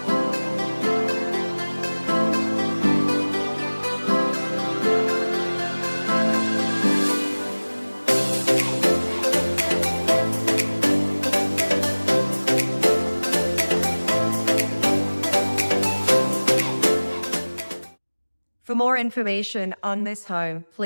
For more information on this home,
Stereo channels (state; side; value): inverted; both; correlation -1.00